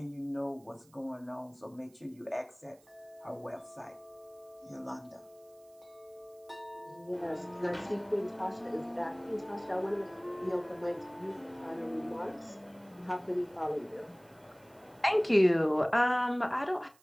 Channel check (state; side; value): noise; right; hiss, 29 dB below the sound